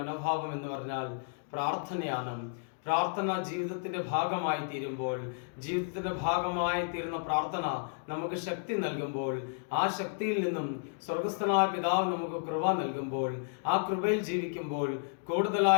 എന്ന് പറഞ്ഞാൽ പ്രാർത്ഥനയാണ്. പ്രാർത്ഥന ജീവിതത്തിന്റെ ഭാഗമായി തീരുമ്പോൾ, ജീവിതത്തിന്റെ ഭാഗമായി തീരുന്ന പ്രാർത്ഥന നമുക്ക് ശക്തി നൽകുമ്പോൾ, ആ ശക്തിയിൽ നിന്നും സ്വർഗസ്ഥനായ പിതാവ് നമുക്ക് കൃപ നൽകുമ്പോൾ, ആ കൃപയിൽ ജീവിക്കുമ്പോൾ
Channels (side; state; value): right; silent; digital silence